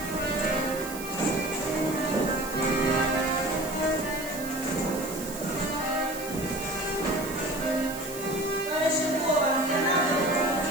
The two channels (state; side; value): noise; right; hiss, 11 dB below the sound